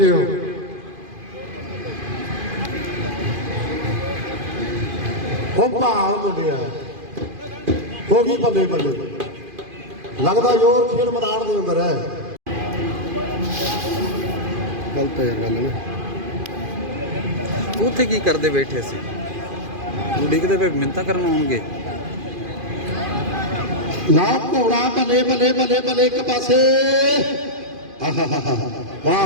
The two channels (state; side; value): late; left; 2.5 ms